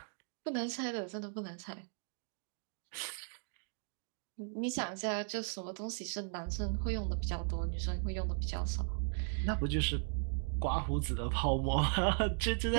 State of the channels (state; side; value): silent; left; 53 dB below the other